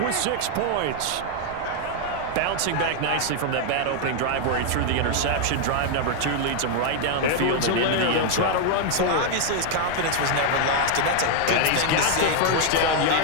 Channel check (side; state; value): both; different; correlation 0.00